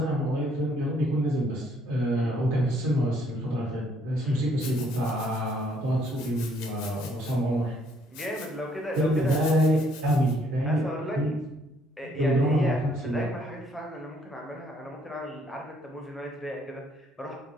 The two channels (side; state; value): both; normal; correlation 0.66